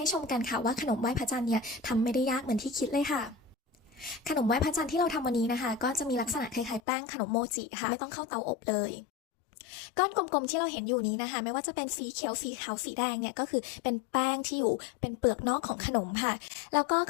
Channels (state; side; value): drops out; right; at 6.8 s